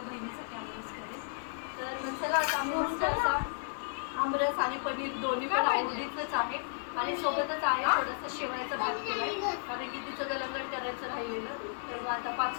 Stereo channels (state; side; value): silent; right; 56 dB below the other